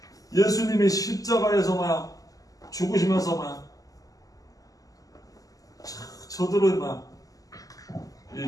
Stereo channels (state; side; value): late; right; 0.17 ms